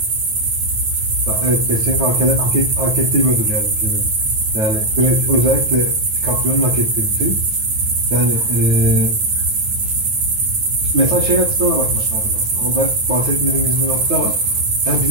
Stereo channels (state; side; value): late; left; 9.4 ms